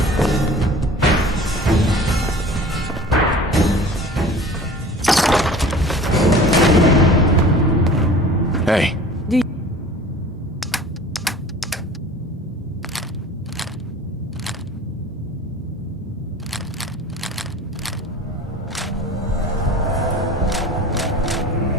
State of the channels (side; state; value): both; normal; correlation 0.43